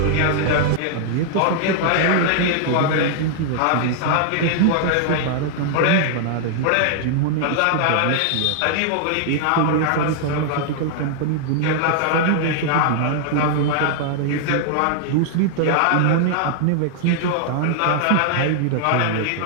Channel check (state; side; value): different; both; correlation -0.01